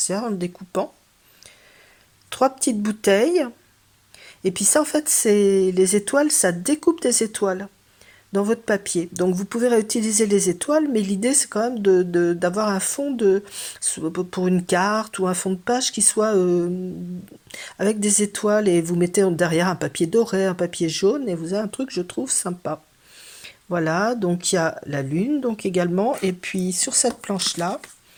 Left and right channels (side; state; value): both; identical; correlation 1.00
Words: en le découpant. 3 petites bouteilles. Et puis ça, en fait, c'est les étoiles, ça découpe des étoiles dans votre papier. Donc vous pouvez réutiliser les étoiles, mais l'idée c'est quand même d'avoir un fond pour une carte ou un fond de page qui soit avec des étoiles et vous mettez derrière un papier doré, un papier jaune et vous avez un truc je trouve sympa. Voilà, donc il y a la lune donc également et puis sur cette planche là,